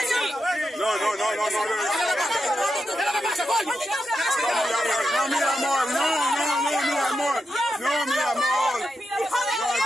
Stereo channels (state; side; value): normal; both; correlation 0.87